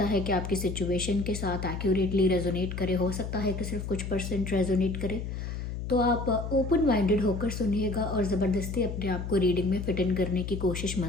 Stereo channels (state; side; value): noise; left; hum, 5 dB below the sound